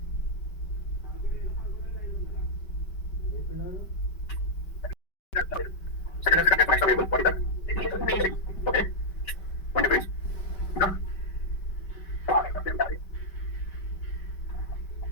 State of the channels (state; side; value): late; right; 5.2 ms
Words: Second and second extra variable. What is that? Okay. One difference.